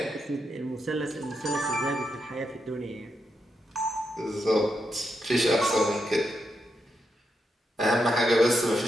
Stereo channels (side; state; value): both; normal; correlation 0.83